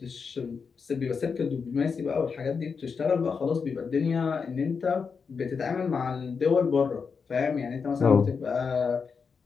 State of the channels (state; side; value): quieter; right; 5.6 dB